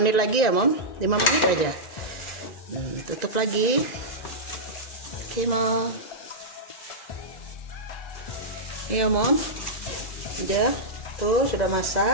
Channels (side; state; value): right; late; 2.0 ms